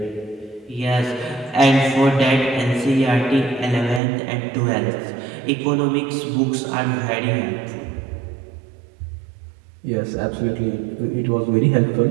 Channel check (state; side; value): drops out; left; at 4.0 s